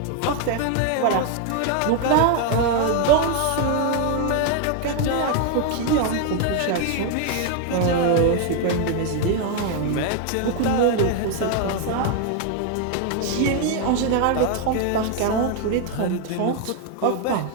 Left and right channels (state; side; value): different; both; correlation 0.01